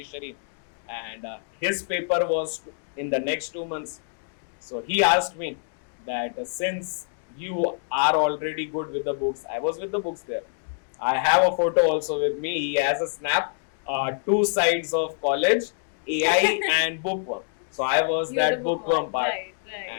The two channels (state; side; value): silent; right; digital silence